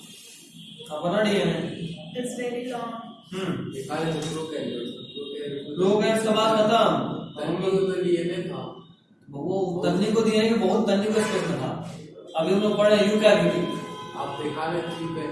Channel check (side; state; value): both; identical; correlation 1.00